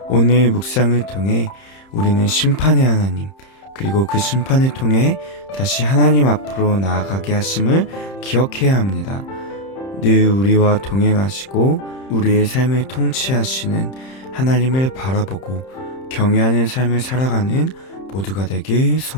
오늘 묵상을 통해 우리는 심판의 하나님, 그리고 그 심판을 통해 다시 하나님 앞으로 나아가게 하심을 기억해야 합니다. 늘 우리와 동행하시고 우리의 삶을 통치하시는 하나님을 바라보고 경외하는 삶을 살아가는 모두가 되길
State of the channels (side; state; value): right; late; 31 ms